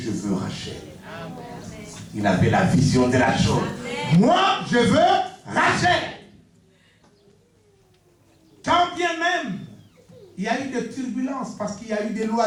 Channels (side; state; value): both; identical; correlation 1.00